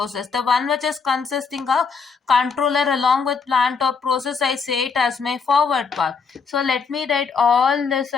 The one which is consisting of controller along with plant or process, I say it as my forward path. So let me write all this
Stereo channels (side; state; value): right; quieter; 5.4 dB